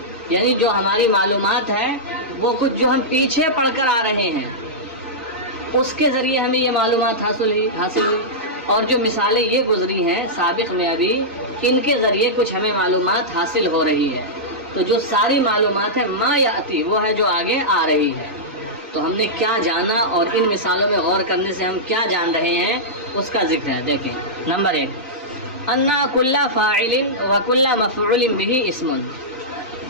یعنی جو ہماری معلومات ہے وہ کچھ جو ہم پیچھے پڑھ کر آ رہے ہیں اس کے ذریعے ہمیں یہ معلومات حاصل ہوئی. اور جو مثالیں یہ گزری ہیں سابق میں ابھی ان کے ذریعے کچھ ہمیں معلومات حاصل ہو رہی ہے. تو جو ساری معلومات ہے ما یاتی وہ ہے جو آگے آ رہی ہے. تو ہم نے کیا جانا اور ان مثالوں میں غور کرنے سے ہم کیا جان رہے ہیں اس کا ذکر ہے. دیکھیں نمبر 1 انا کل فاعل و کل مفعول به اسم.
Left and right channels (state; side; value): normal; both; correlation -0.12